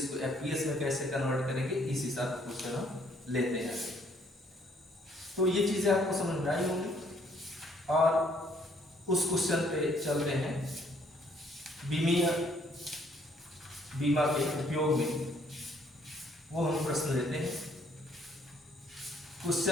को एफपीएस में कैसे कन्वर्ट करेंगे, इस हिसाब से क्वेश्चन हम लेते हैं। तो ये चीजें आपको समझ में आई होंगी और उस क्वेश्चन पे चलते हैं। बीमा के उपयोग में वो हम प्रश्न लेते हैं।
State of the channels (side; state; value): both; normal; correlation 0.65